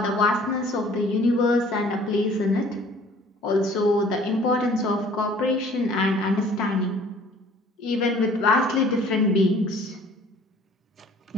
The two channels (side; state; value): both; normal; correlation 0.53